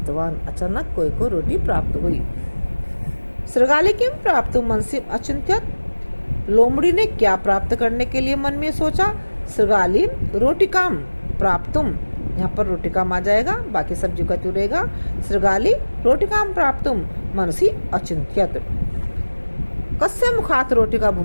अचानक कोए को रोटी प्राप्त हुई। श्रगाली किम प्राप्त मनसि अचिंत्यत। लोमड़ी ने क्या प्राप्त करने के लिए मन में सोचा? श्रगाली रोटिकाम प्राप्तुम। यहाँ पर रोटिकाम आ जाएगा, बाकी सब्जी का रहेगा। श्रगाली रोटिकाम प्राप्तुम मनसि अचिंत्यत। कस्य मुखात रोटी का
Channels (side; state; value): both; inverted; correlation -1.00